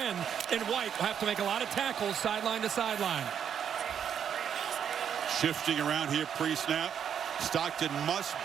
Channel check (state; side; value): quieter; left; 8.4 dB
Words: And White will have to make a lot of tackles sideline to sideline. Shifting around here pre-snap. Stockton must